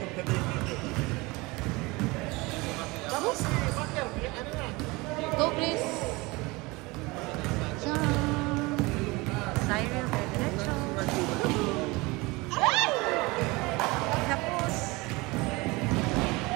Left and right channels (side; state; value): left; quieter; 23.8 dB